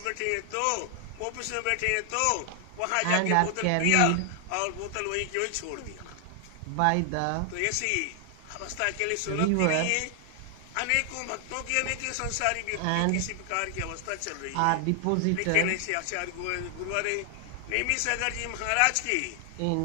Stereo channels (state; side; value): different; both; correlation 0.00